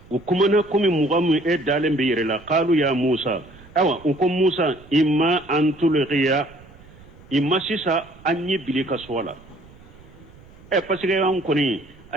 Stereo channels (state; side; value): noise; right; rumble, 23 dB below the sound